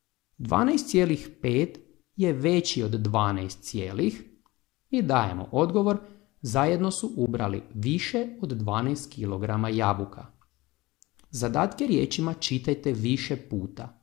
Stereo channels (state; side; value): quieter; right; 20.5 dB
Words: 12,5 je veći od 12 i dajemo odgovor, zajedno su ubrali više od 12 kg jabuka. Zadatke riječima čitajte više puta.